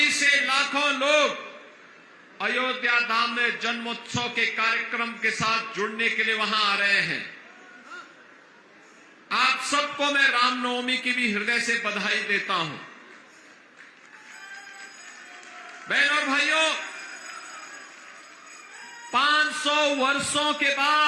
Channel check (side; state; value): both; identical; correlation 1.00